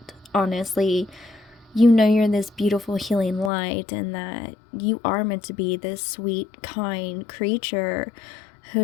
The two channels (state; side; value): drops out; right; at 3.5 s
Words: Honestly, you know you're this beautiful healing light, and that you are meant to be this sweet, kind creature